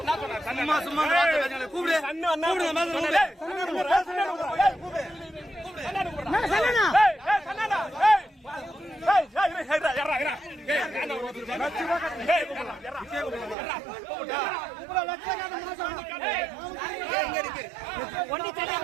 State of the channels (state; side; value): drops out; left; at 13.6 s